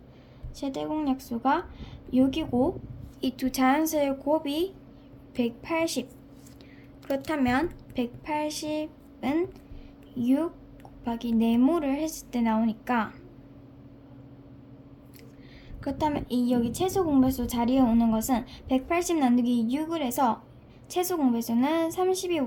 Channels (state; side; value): identical; both; correlation 1.00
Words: 6이고 이 두 자연수의 곱이 180. 그렇다면 180은 6 곱하기 네모를 했을 때 나오니까, 그렇다면 이 여기 최소 공배수 자리에 오는 것은 180 나누기 6을 해서 최소 공배수는